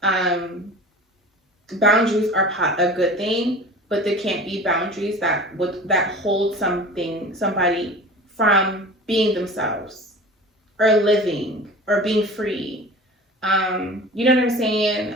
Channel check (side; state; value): both; normal; correlation 0.38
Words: Boundaries are a good thing, but there can't be boundaries that hold somebody from being themselves or living or being free. You know what I'm saying?